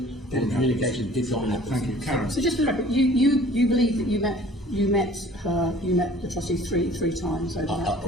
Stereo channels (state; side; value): normal; both; correlation 0.50